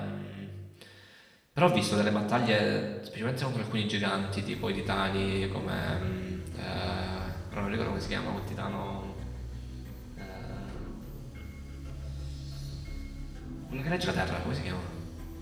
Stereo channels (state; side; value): identical; both; correlation 1.00